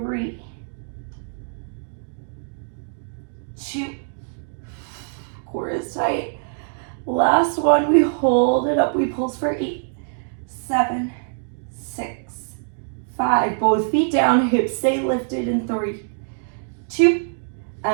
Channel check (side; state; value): left; silent; digital silence